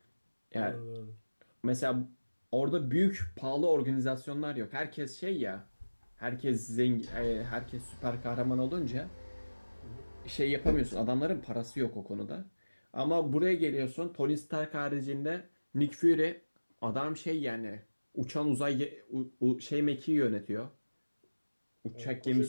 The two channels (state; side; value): inverted; both; correlation -1.00